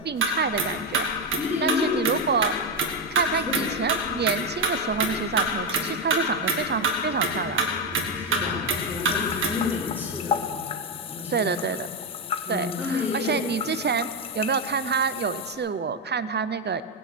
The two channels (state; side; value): normal; both; correlation 0.07